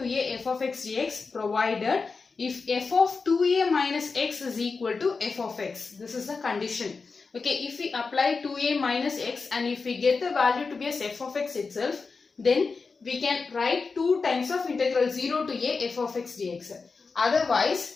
a f of x dx provided if f of 2a minus x is equal to f of x. This is the condition. Okay, if we apply 2a minus x and if we get the value to be as f of x itself, then we can write 2 times of integral 0 to a f of x dx.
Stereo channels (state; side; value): quieter; right; 4.5 dB